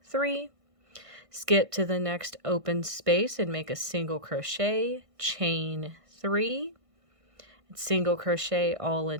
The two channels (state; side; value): late; left; 1.5 ms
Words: 3. Skip to the next open space and make a single crochet, chain 3, and single crochet all